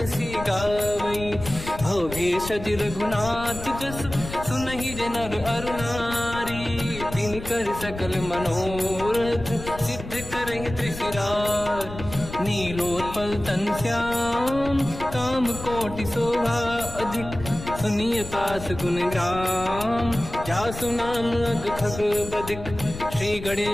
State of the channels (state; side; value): noise; left; rumble, 11 dB below the sound